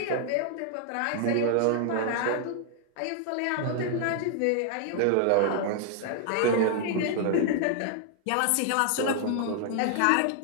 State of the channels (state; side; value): different; both; correlation 0.00